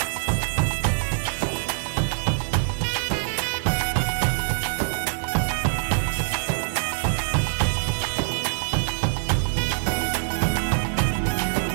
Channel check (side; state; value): left; silent; 62 dB below the other